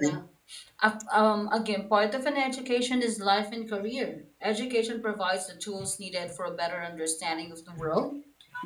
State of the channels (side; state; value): both; identical; correlation 1.00